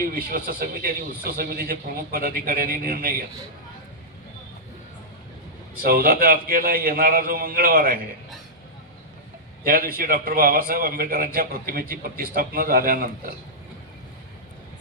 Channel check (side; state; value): both; normal; correlation -0.10